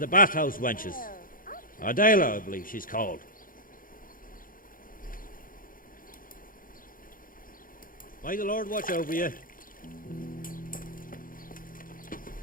bathhouse wenches. Adela, I believe she's called. May the Lord watch over you.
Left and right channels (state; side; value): late; right; 0.40 ms